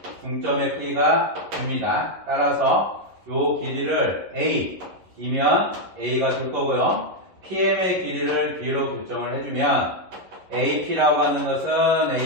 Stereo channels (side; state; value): left; late; 11 ms